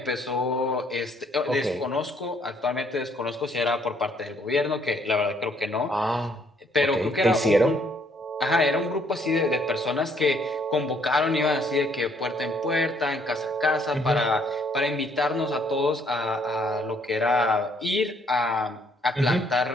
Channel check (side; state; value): both; normal; correlation 0.66